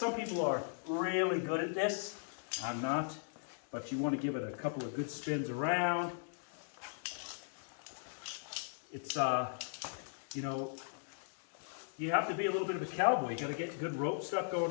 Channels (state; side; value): silent; right; digital silence